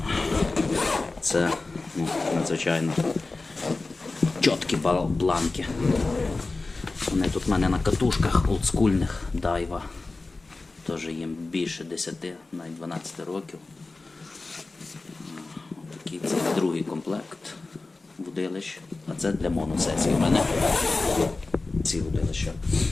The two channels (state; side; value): quieter; right; 3.5 dB